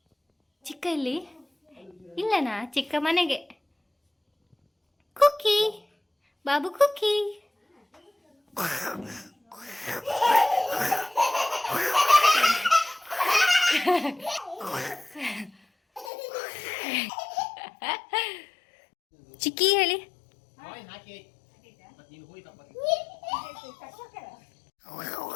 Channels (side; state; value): right; drops out; at 16.1 s